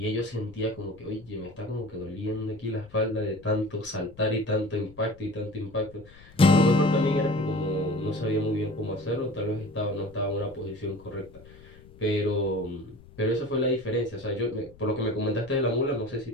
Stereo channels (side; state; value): left; noise; rumble, 22 dB below the sound